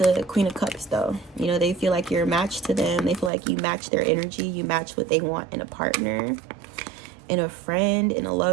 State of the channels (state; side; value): drops out; left; at 3.3 s